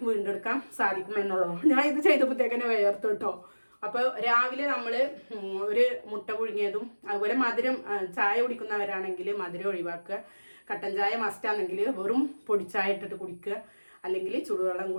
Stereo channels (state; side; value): inverted; both; correlation -1.00